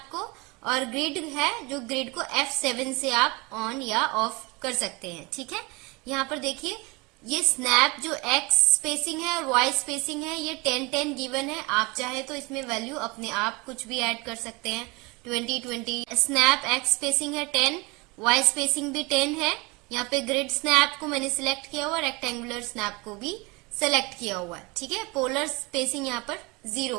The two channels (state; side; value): quieter; left; 26.1 dB